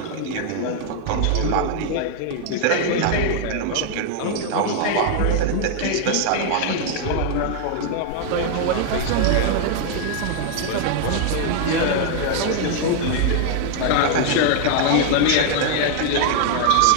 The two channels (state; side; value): different; both; correlation 0.00